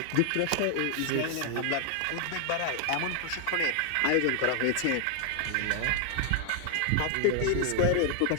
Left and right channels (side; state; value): both; different; correlation 0.00